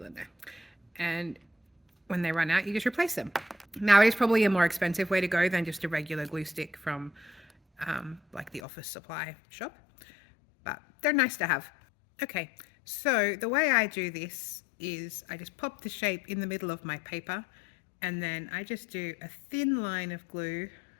in there, and when they run out, you just replace them. Now, it is probably a more expensive way to go than just a regular glue stick from like the office supply shop, but they're nice to have. Okay, so the way I do this is I just pop the shape in the middle of my paper, and then I just do a thin line of glue,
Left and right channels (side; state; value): right; drops out; at 8.6 s